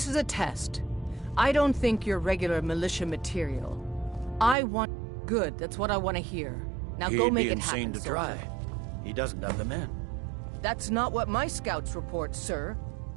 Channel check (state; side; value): drops out; left; at 4.5 s